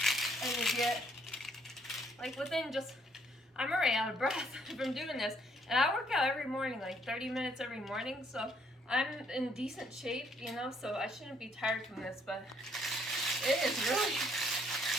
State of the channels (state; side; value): normal; both; correlation 0.68